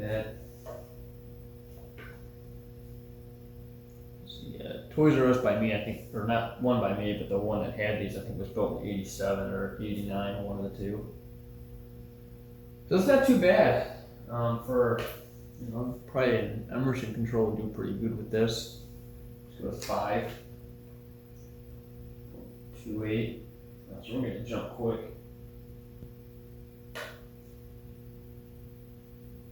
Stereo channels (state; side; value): identical; both; correlation 1.00